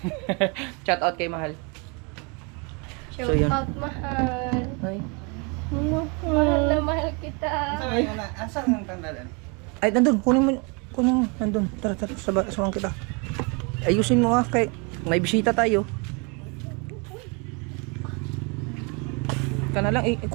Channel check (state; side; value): quieter; left; 32.3 dB